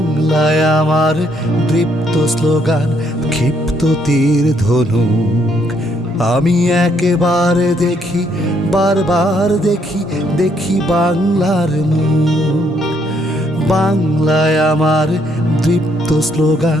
আমার দৃপ্ত স্লোগান, ক্ষিপ্ত তীর ধনুক। আমি একেবারে দেখি, বারবার দেখি, দেখি বাংলার মুখ। বাংলায় আমার দৃপ্ত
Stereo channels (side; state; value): both; normal; correlation 0.71